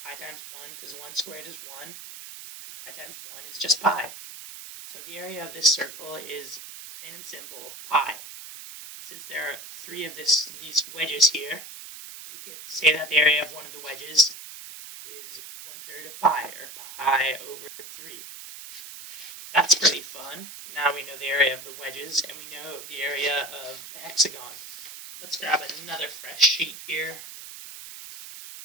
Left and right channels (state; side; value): noise; right; hiss, 12 dB below the sound